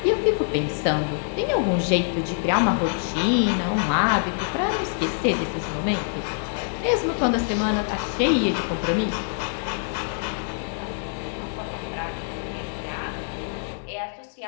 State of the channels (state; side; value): silent; right; digital silence